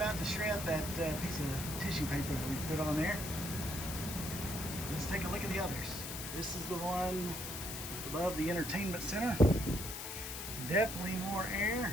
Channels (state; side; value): noise; left; hiss, 6 dB below the sound